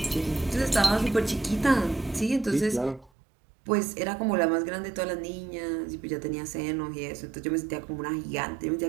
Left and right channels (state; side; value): drops out; left; at 3.1 s